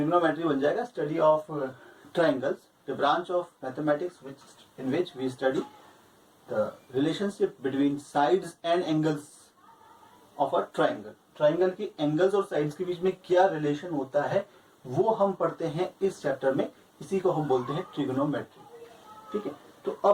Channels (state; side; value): identical; both; correlation 1.00